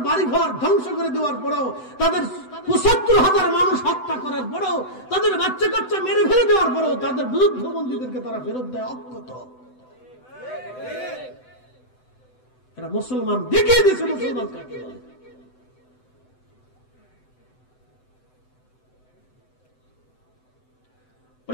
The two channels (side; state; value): right; late; 7.9 ms